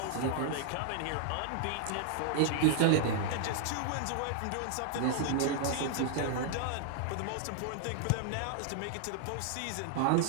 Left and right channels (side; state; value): both; different; correlation -0.01